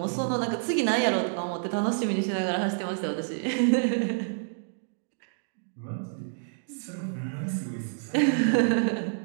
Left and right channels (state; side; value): silent; left; digital silence